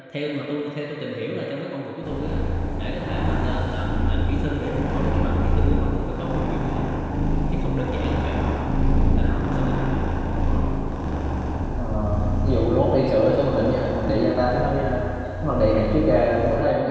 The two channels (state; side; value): identical; both; correlation 1.00